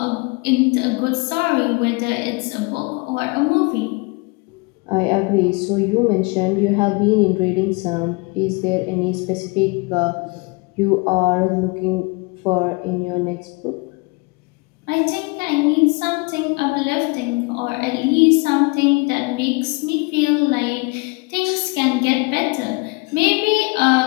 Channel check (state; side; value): quieter; right; 28.3 dB